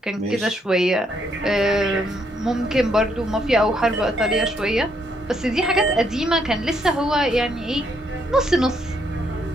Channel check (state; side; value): normal; both; correlation 0.73